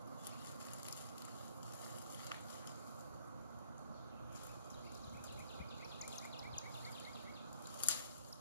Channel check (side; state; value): both; inverted; correlation -0.59